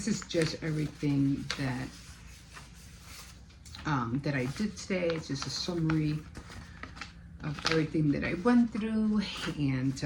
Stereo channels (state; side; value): identical; both; correlation 1.00